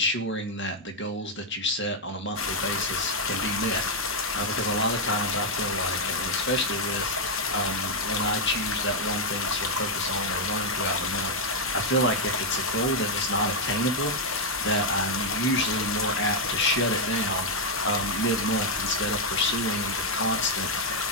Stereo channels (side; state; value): both; normal; correlation -0.01